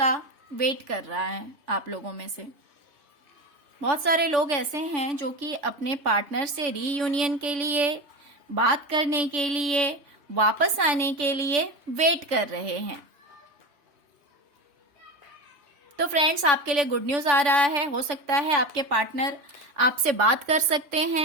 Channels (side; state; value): left; late; 3.5 ms